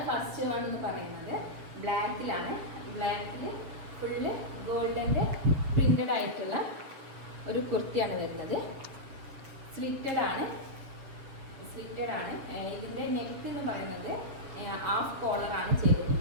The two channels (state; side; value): late; left; 7.2 ms